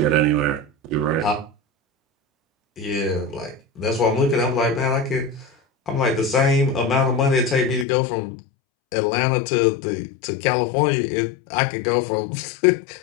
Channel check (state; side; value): drops out; right; at 7.9 s